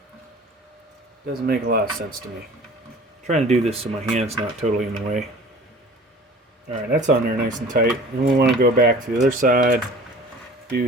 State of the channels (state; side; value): normal; both; correlation 0.44